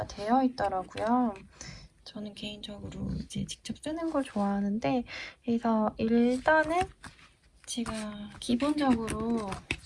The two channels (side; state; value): both; identical; correlation 1.00